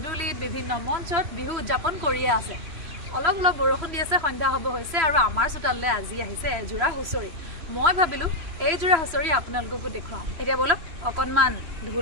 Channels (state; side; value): late; left; 3.0 ms